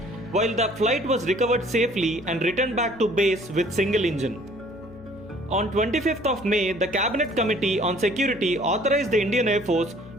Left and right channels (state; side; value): noise; left; hum, 19 dB below the sound